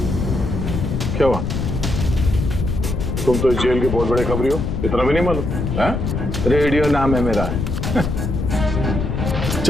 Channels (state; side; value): noise; left; rumble, 2 dB below the sound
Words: क्या हुआ? तुम तो जेल के बहुत बड़े खबरी हो, इतना भी नहीं मालूम? रेडियो नाम है मेरा।